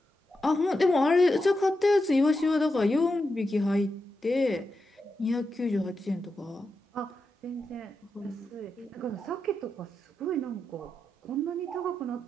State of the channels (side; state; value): both; normal; correlation 0.88